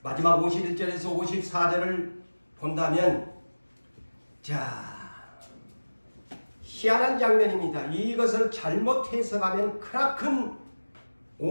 마지막 51절에서 54절을 본다면 희한한 장면입니다. 이것을 잘못 해석하면 크나큰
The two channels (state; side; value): inverted; both; correlation -1.00